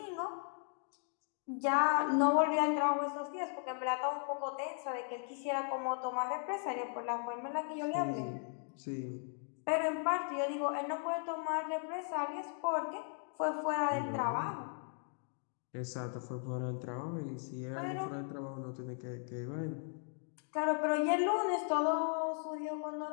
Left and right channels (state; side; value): silent; right; 53 dB below the other